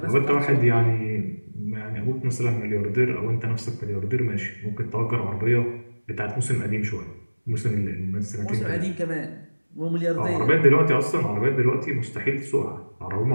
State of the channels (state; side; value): inverted; both; correlation -1.00